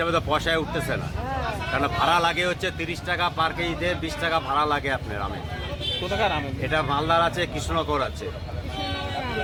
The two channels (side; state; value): both; identical; correlation 1.00